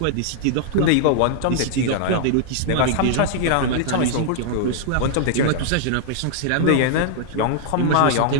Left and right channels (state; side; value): different; both; correlation -0.01